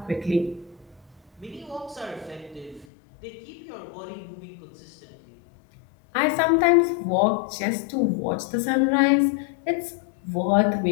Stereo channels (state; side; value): drops out; right; at 2.9 s